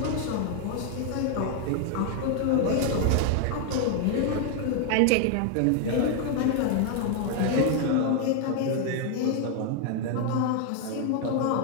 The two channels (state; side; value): different; both; correlation 0.00